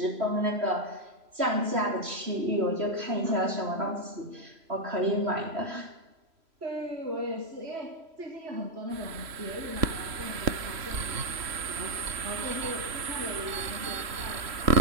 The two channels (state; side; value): late; left; 3.0 ms